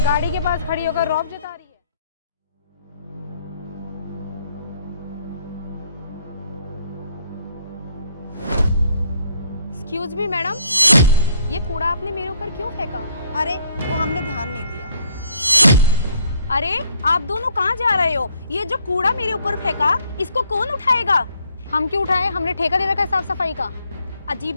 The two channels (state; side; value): inverted; both; correlation -0.65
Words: गाड़ी के पास खड़ी होकर रौब जता रही है। एक्सक्यूज मी मैडम, ये कूड़ा आपने मेरे ऊपर क्यों फेंका? अरे वो हमने ध्यान नहीं दिया। अरे आप दोनों कहाँ जा रहे हो? ये जो कूड़ा मेरे ऊपर फेंका, इसको कौन उठाएगा? हम क्यों उठाए? हमने ठेका दे रखा है साफ सफाई का। अजीब